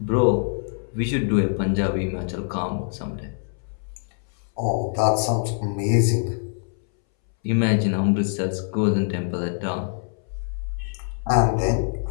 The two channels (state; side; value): silent; right; 62 dB below the other